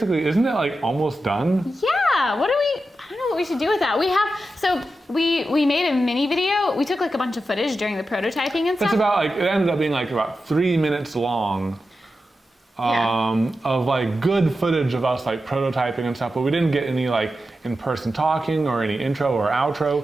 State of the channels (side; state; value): both; normal; correlation 0.90